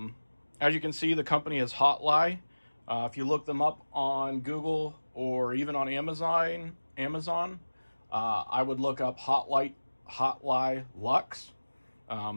you can see, the company is Hotligh. If you look them up on Google or even on Amazon, I would look up Hotligh Lux.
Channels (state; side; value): inverted; both; correlation -1.00